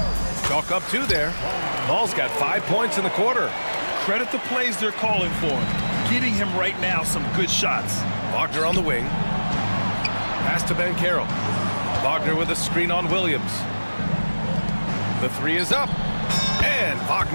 Chalk up 2 there. Ball's got 5 points in the quarter. Credit the plays they're calling for him. Getting him right now some good shots. Wagner on the wing. Pass to Banchero. Wagner with a screen on Williams. The 3 is up. And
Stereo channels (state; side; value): inverted; both; correlation -1.00